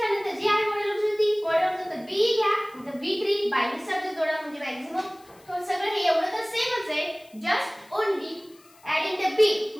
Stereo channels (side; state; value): left; noise; hiss, 28 dB below the sound